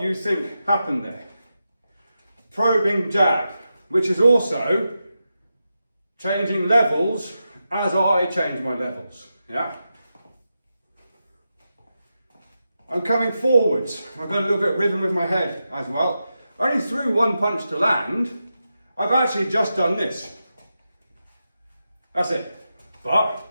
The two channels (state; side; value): inverted; both; correlation -0.89